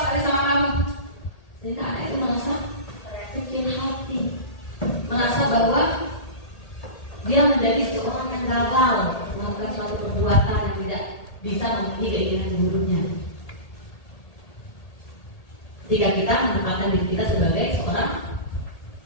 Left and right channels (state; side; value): late; right; 1.8 ms